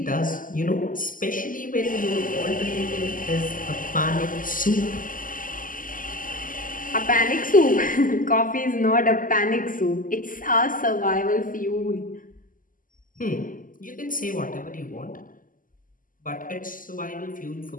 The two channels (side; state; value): right; late; 0.40 ms